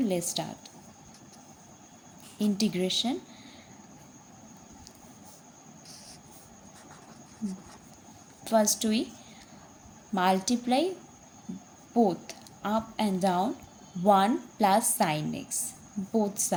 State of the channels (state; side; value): identical; both; correlation 1.00